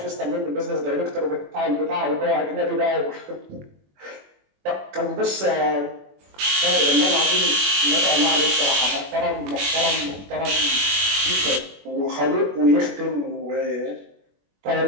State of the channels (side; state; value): left; late; 21 ms